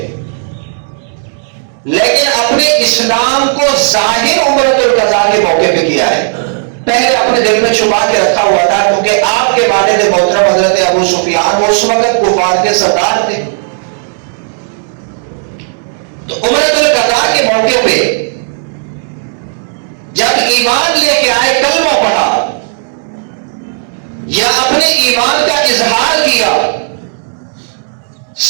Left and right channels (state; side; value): silent; left; digital silence